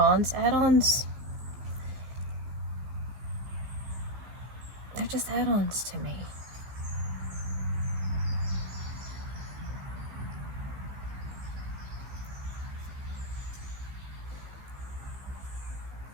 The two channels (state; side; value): late; left; 15 ms